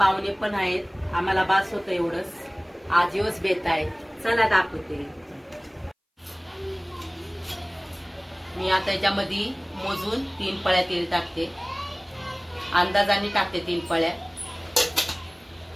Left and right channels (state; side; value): identical; both; correlation 1.00